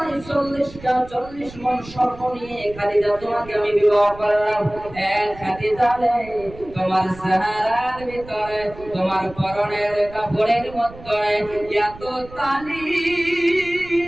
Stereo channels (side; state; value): right; noise; rumble, 17 dB below the sound